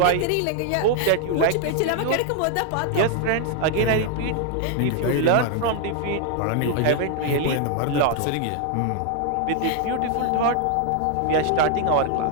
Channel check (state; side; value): different; both; correlation 0.00